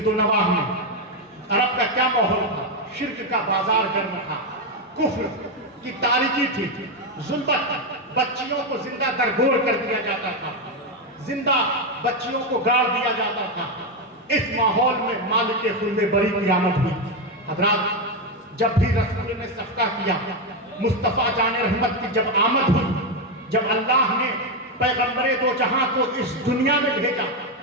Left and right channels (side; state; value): both; normal; correlation 0.07